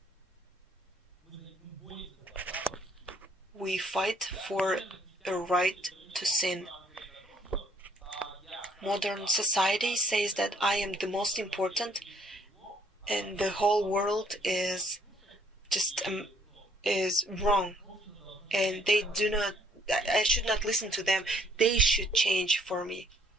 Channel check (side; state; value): both; normal; correlation 0.64